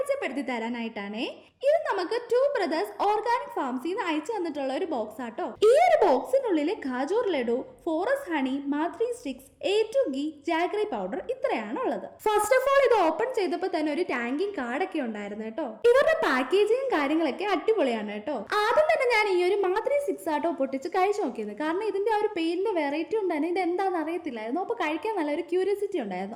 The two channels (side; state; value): both; identical; correlation 1.00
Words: തരാനായിട്ടാണ്. ഇത് നമുക്ക് ടു ബ്രദേഴ്സ് ഓർഗാനിക് ഫാർമസിൽ നിന്ന് അയച്ചു തന്നിട്ടുള്ള ഒരു ബോക്സ് ആട്ടോ. ഈ ഒരു ബോക്സിനുള്ളിൽ khajoor laddu, forest honey, mathri sticks, A2 ghee, jaggery powder ഇത്രയാണ് ഉള്ളത്. ഫസ്റ്റ് ഓഫ് ഓൾ ഇത് ഓപ്പൺ ചെയ്തപ്പോൾ തന്നെ ഒരു ടാങ്കിങ് കാർഡൊക്കെ ഉണ്ടായിരുന്നു കേട്ടോ. ഇവരുടെ പാക്കേജിങ്ങും കാര്യങ്ങളൊക്കെ അടിപൊളിയാണ് കേട്ടോ. ആദ്യം തന്നെ ഞാൻ ഈ ഒരു മാത്രി സ്റ്റിക്സ് ആട്ടോ പൊട്ടിച്ച് കഴിച്ചു നോക്കിയത്. കാരണം ഇതിന്റെ ആ ഒരു പേരിന്റെ വെറൈറ്റി ഉണ്ടായിരുന്നു, ഇത് എന്താണെന്ന് അറിയത്തില്ലായിരുന്നു. അപ്പൊ കഴിക്കാൻ നല്ലൊരു ക്യൂരിയോസിറ്റി